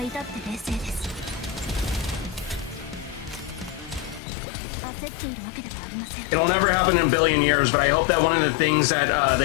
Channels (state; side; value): drops out; right; at 4.2 s